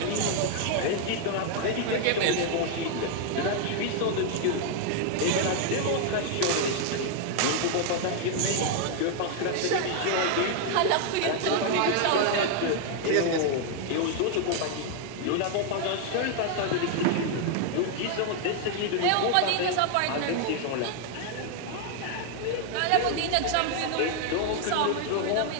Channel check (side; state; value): both; different; correlation 0.00